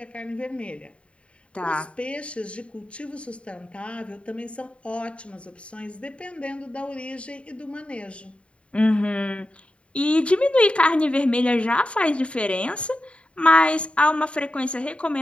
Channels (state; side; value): late; right; 0.060 ms